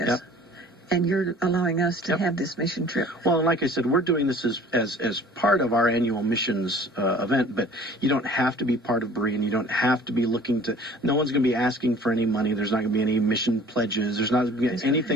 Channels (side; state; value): both; normal; correlation 0.49